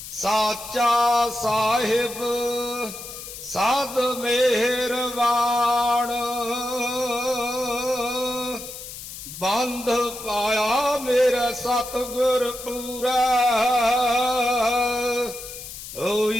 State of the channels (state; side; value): noise; left; hiss, 12 dB below the sound